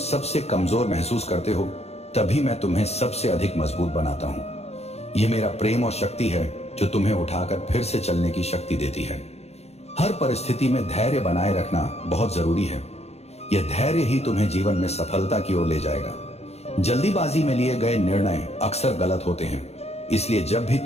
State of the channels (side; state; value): right; late; 0.31 ms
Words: कमजोर महसूस करते हो, तभी मैं तुम्हें सबसे अधिक मजबूत बनाता हूं। यह मेरा प्रेम और शक्ति है जो तुम्हें उठाकर फिर से चलने की शक्ति देती है। हर परिस्थिति में धैर्य बनाए रखना बहुत जरूरी है। यह धैर्य ही तुम्हें जीवन में सफलता की ओर ले जाएगा। जल्दीबाजी में लिए गए निर्णय अक्सर गलत होते हैं, इसलिए जब भी